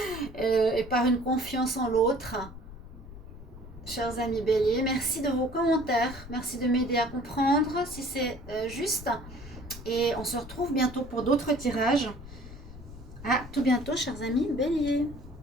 et par une confiance en l'autre. Chers amis béliers, merci de vos commentaires, merci de m'aider à comprendre si c'est juste. Et on se retrouve bientôt pour d'autres tirages. À tout bientôt, chers amis béliers.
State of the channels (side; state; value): left; noise; rumble, 15 dB below the sound